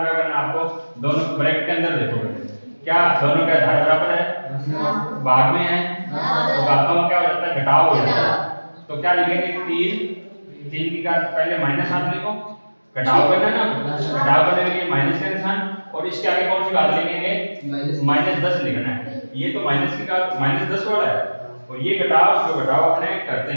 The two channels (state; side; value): inverted; both; correlation -1.00